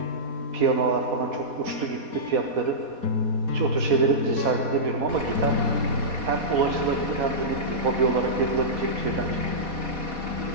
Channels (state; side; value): late; left; 4.2 ms